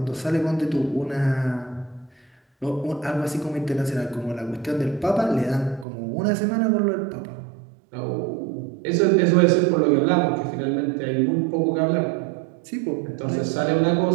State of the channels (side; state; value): left; drops out; at 5.9 s